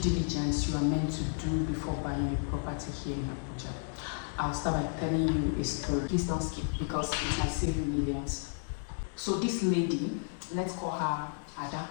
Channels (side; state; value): right; silent; digital silence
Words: you are meant to do before buying a property here in Abuja. I'll start by telling you a story. Please don't skip because it might save you millions. So this lady, let's call her Ada.